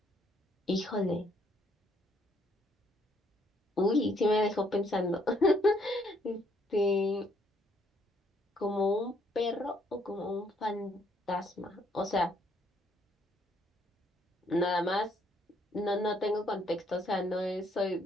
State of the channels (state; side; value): normal; both; correlation 0.68